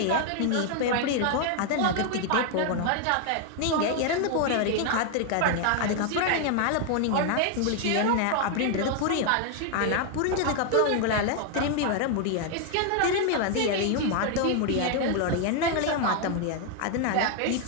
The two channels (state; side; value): different; both; correlation 0.00